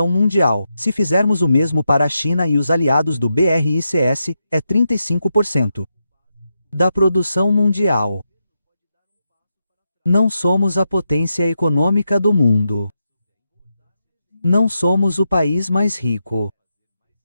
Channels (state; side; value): inverted; both; correlation -0.86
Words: mundial. Se fizermos o mesmo para a China e os aliados do BRICS, é 35% da produção mundial. Não somos a potência econômica do mundo. Não somos o país mais rico.